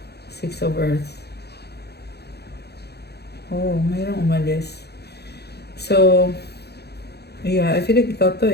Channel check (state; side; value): late; right; 0.48 ms